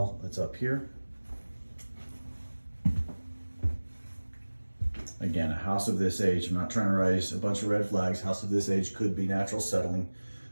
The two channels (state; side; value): inverted; both; correlation -1.00